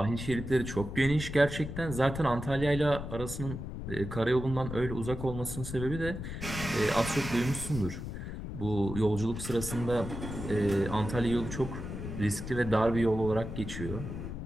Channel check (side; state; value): left; noise; rumble, 7 dB below the sound